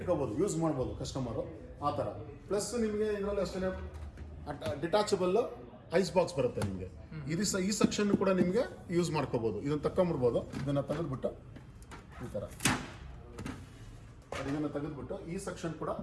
ಯೂಸ್ ಮಾಡ್ಬೋದು ಕಸ್ಟಮರು ಆ ಥರ. ಪ್ಲಸ್ ನಿಮಗೆ ಇದರಲ್ಲಿ ಅಷ್ಟೇ ಡಿಟ್ಯಾಚಬಲ್ ಐಸ್ ಬಾಕ್ಸ್ ಬರುತ್ತೆ ನಿಮಗೆ. ಈ ಸೆಕ್ಷನ್ ಕೂಡ ನಿಮಗೆ ಯೂಸ್ ಮಾಡ್ಕೋಬೋದು. ಇದನ್ನು ತಗೊಂಬಿಡ್ಬೋದು. ಇದನ್ನು ತೆಗೆದುಬಿಟ್ಟು ಈ ಥರ ಇದನ್ನು ತೆಗೆದುಬಿಟ್ಟು ಈ ಸೆಕ್ಷನ್ ಕೂಡ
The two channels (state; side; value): identical; both; correlation 1.00